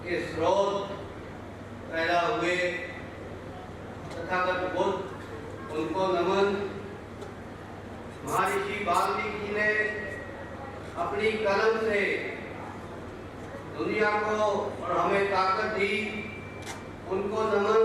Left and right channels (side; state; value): both; identical; correlation 1.00